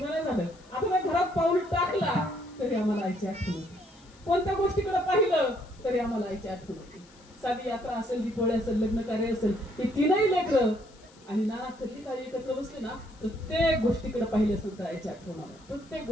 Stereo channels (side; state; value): left; noise; hiss, 27 dB below the sound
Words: नाही झालं. आता त्या घरात पाऊल टाकला तरी आम्हाला आईची आठवण होती. कोणत्या गोष्टीकडे पाहिलं तरी आम्हाला आईची आठवण होती. साधी यात्रा असेल, दीपावली असेल, लग्न कार्य असेल, ही 3ही लेकरं आणि नाना कधी काही एकत्र बसले ना प्रत्येक गोष्टीकडे पाहिले असेल तर आईची आठवण आलं. प्रत्येक